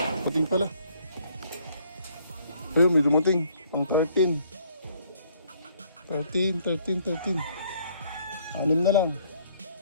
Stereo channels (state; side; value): inverted; both; correlation -0.64